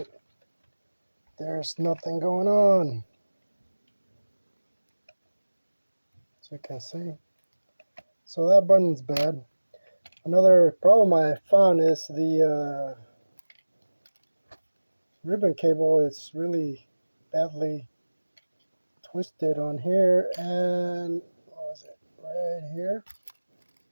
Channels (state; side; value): inverted; both; correlation -1.00